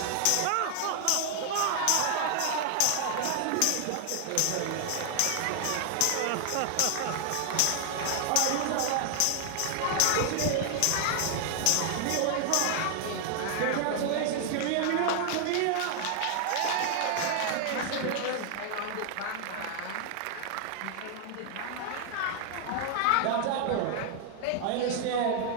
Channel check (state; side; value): different; both; correlation 0.00